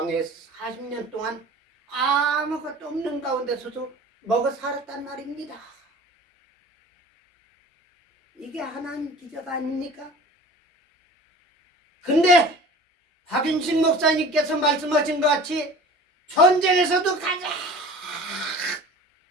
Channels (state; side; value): normal; both; correlation 0.41